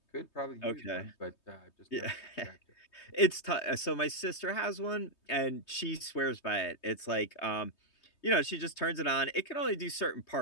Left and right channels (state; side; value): late; right; 3.2 ms